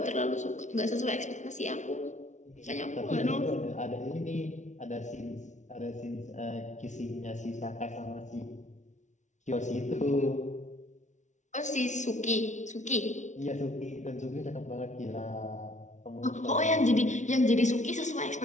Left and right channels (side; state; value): right; late; 0.35 ms